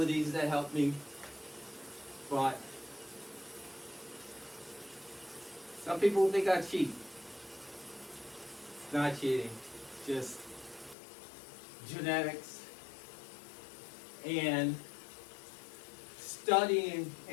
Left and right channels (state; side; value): drops out; right; at 11.0 s